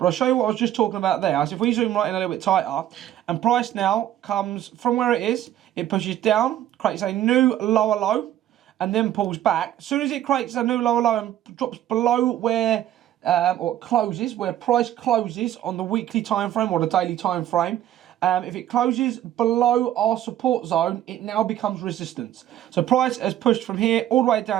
I'll show you what I was just talking about there. So if we zoom right in a little bit tighter, and price now comes from where it is, it pushes down, creates a new lower low, and then pulls back. As soon as it creates a new lower low and drops below where or closes, where price closes on the weekly time frame or the daily time frame, if it closes below our support zone, it now becomes resistance. So price has pushed from here all the way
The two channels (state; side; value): quieter; left; 12.2 dB